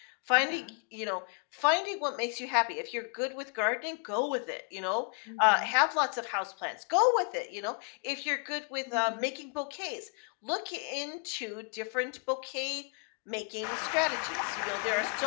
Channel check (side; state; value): right; quieter; 36.8 dB